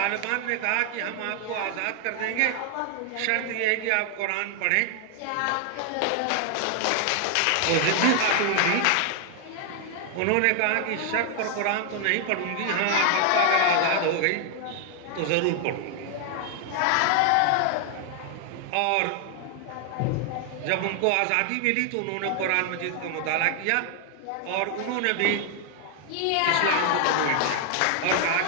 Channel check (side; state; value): both; different; correlation 0.00